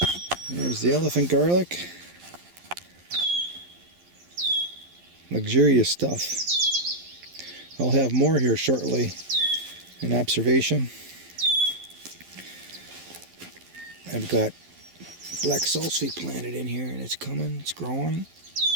There's the elephant garlic. Luxurious stuff. I'll have more here shortly in observation. I've got black salsify planted in here and it's coming, it's growing.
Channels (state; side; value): late; left; 11 ms